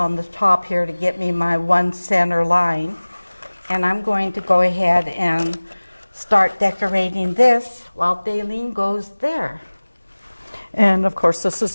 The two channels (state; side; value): inverted; both; correlation -1.00